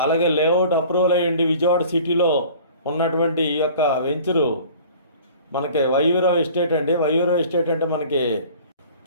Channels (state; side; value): inverted; both; correlation -0.46